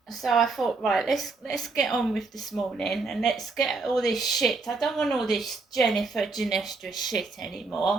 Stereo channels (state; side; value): quieter; left; 3.9 dB